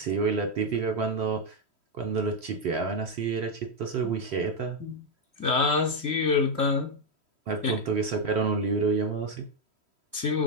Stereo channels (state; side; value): late; left; 3.1 ms